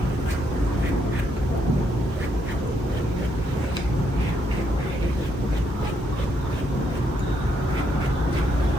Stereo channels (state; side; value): normal; both; correlation 0.75